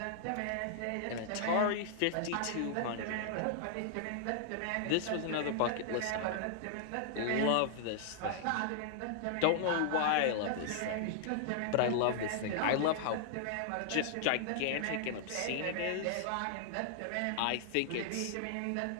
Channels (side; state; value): both; different; correlation -0.01